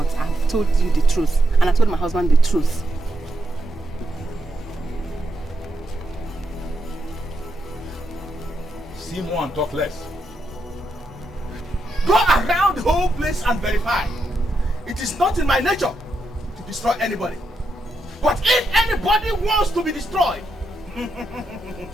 I've told you the truth. And I told my husband the truth. See more and talk less. Go around the whole place and verify. It is not in my nature to destroy anybody. But if anybody wants to be destroyed,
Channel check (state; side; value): normal; both; correlation 0.82